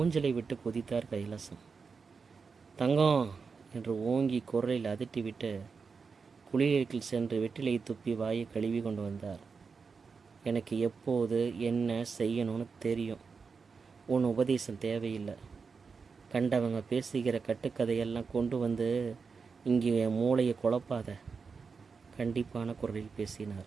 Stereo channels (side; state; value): left; quieter; 5.2 dB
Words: விட்டு குதித்தார் கைலாசம். தங்கம் என்று ஓங்கி குரலில் அதட்டிவிட்டு குளியலுக்குள் சென்று வெற்றிலையை துப்பி வாயை கழுவி கொண்டு வந்தார். எனக்கு எப்போது என்ன செய்யணும்னு தெரியும். உன் உபதேசம் தேவையில்லை. கண்டவங்க பேசுகிற கட்டுக்கதையெல்லாம் கொண்டு வந்து இங்கே என் மூளையை குழப்பாத. கண்டிப்பான குரலில்